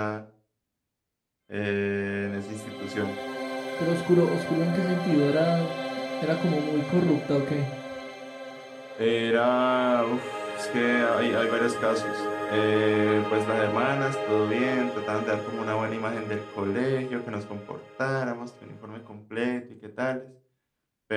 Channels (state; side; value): identical; both; correlation 1.00